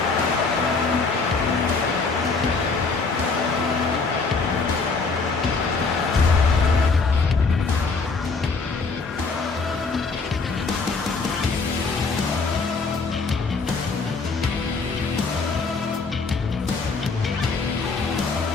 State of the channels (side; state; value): right; quieter; 4.3 dB